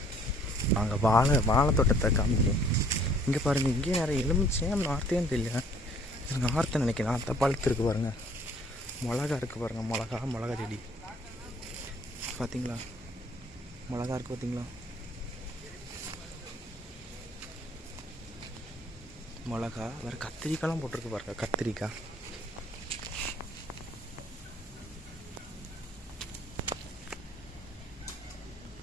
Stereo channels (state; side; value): normal; both; correlation 0.58